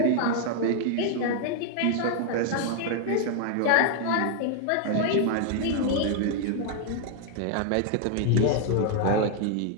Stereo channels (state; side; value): different; both; correlation 0.00